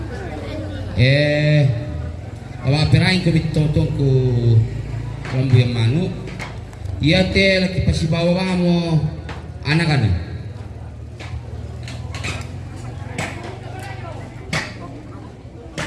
Awapirain ko bitotong ko Rambuyang Manu. Iya te laki pasibawa mo anak-anak.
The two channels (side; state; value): both; identical; correlation 1.00